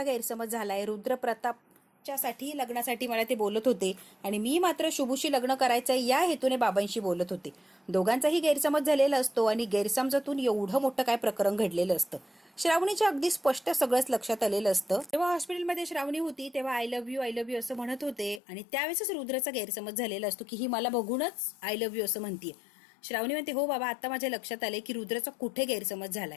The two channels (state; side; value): drops out; right; at 18.4 s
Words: गैरसमज झालाय, रुद्रप्रतापच्या साठी लग्नासाठी मला ते बोलत होते आणि मी मात्र शुभूशी लग्न करायचंय या हेतूने बाबांशी बोलत होते. दोघांचाही गैरसमज झालेला असतो आणि गैरसमजातून एवढं मोठं काय प्रकरण घडलेलं असतं. श्रावणीच्या अगदी स्पष्ट सगळंच लक्षात आलेलं असतं. जेव्हा हॉस्पिटलमध्ये श्रावणी होती तेव्हा आय लव्ह यू असं म्हणत होते आणि त्यावेळेसच रुद्राचा गैरसमज झालेला असतो की ही मला बघूनच आय लव्ह यू असं म्हणतीये. श्रावणी म्हणते हो बाबा आता माझ्या लक्षात आले की रुद्राचा कुठे गैरसमज